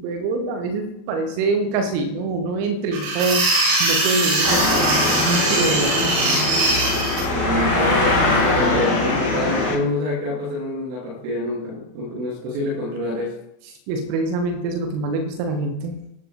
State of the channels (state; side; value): late; left; 40 ms